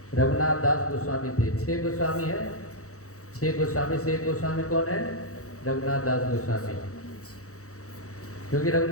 रघुनाथ दास गोस्वामी थे। 6 गोस्वामी है। 6 गोस्वामी से एक गोस्वामी कौन है? रघुनाथ दास गोस्वामी। क्योंकि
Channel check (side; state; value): right; late; 0.65 ms